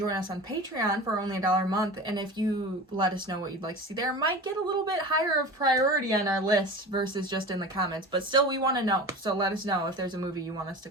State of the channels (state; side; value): normal; both; correlation 0.33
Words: us on Patreon for only $1 a month, and if you let us know what you'd like to see there, it might get a little bit higher of priority on our list versus just in the comments, but still we want to know, so let us know if there's a movie you want us to